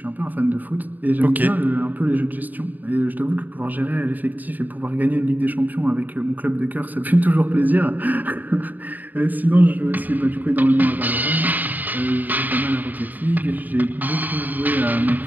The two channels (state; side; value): late; left; 0.084 ms